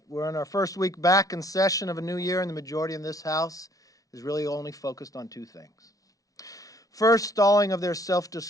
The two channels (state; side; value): late; right; 0.18 ms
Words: we're in our first week back in session of a new year, and the majority in this House is really only focused on two things. First, stalling of their